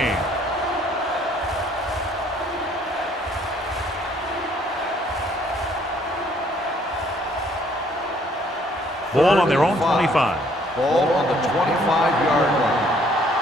Ball on their own 25. Ball on the 25-yard line.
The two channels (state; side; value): normal; both; correlation 0.63